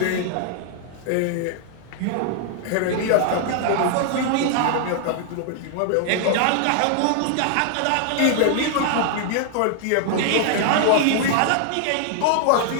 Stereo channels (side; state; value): both; different; correlation 0.00